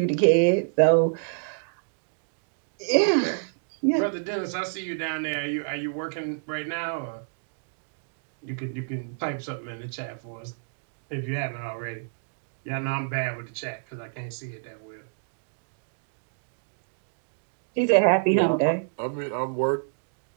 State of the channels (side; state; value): left; silent; digital silence